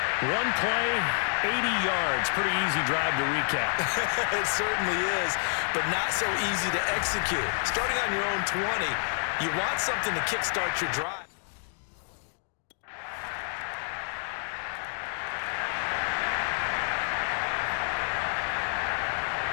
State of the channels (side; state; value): right; silent; digital silence